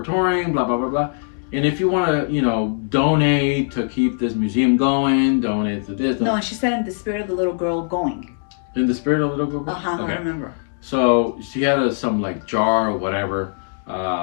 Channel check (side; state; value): right; silent; 65 dB below the other